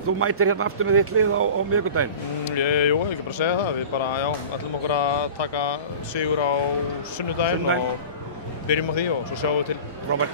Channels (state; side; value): inverted; both; correlation -0.37